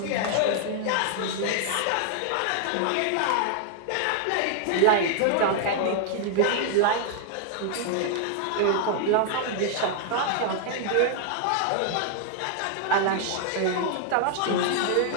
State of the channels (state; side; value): different; both; correlation -0.01